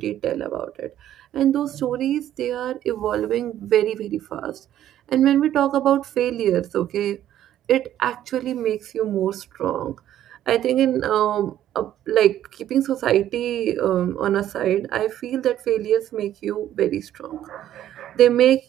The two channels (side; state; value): left; quieter; 11.9 dB